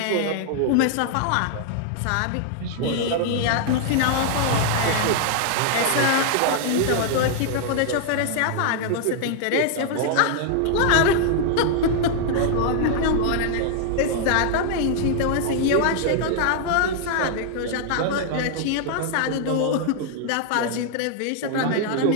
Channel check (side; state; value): both; different; correlation 0.00